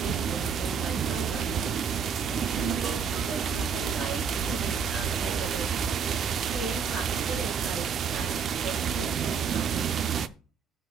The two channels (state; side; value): quieter; left; 6.5 dB